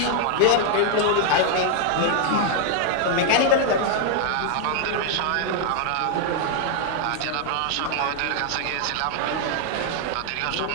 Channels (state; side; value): different; both; correlation 0.00